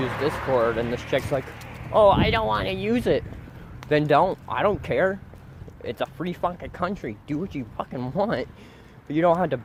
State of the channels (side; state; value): both; identical; correlation 1.00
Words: Discord, and this chick's like, oh, I don't want to use it. Then don't. I don't care. It's a free fucking country. Do what you fucking want. But you don't have to